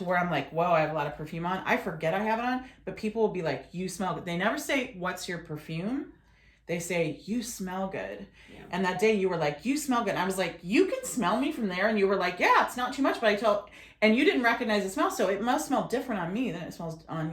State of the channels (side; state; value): both; identical; correlation 1.00